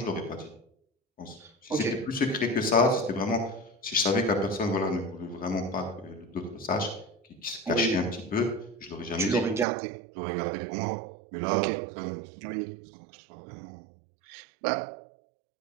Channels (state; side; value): drops out; left; at 9.7 s